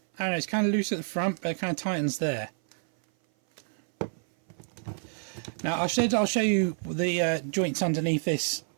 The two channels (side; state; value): left; silent; 57 dB below the other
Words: don't know, it's kind of loose at the front, but it kind of tightens there. Now I'll show you the joints underneath this